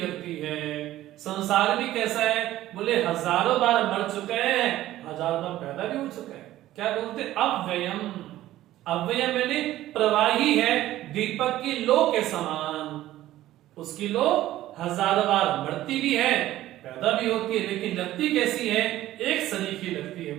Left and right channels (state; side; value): quieter; left; 14.6 dB